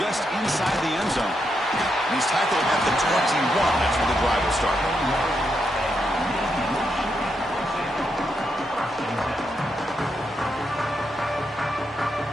inside the end zone. And he's tackled at the 21. That's where the drive will start.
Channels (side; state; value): both; normal; correlation 0.82